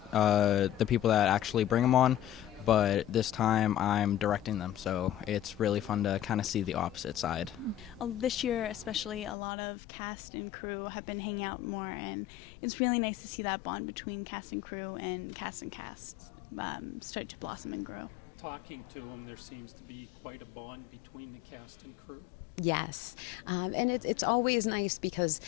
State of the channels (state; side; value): drops out; right; at 9.3 s